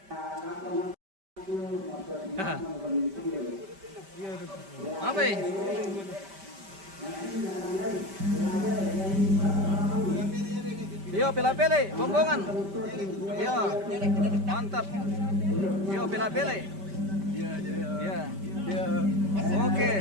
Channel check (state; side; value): late; left; 5.1 ms